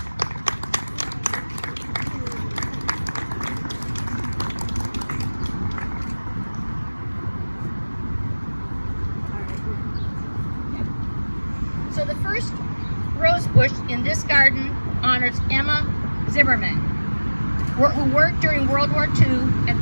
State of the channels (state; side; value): inverted; both; correlation -1.00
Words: So the first rose bush in this garden honors Emma Zimmerman, who worked during World War II at